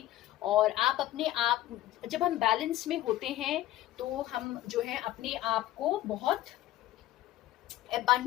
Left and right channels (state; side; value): quieter; right; 14.7 dB